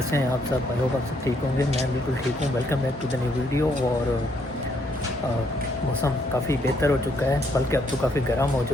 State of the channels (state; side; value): normal; both; correlation 0.72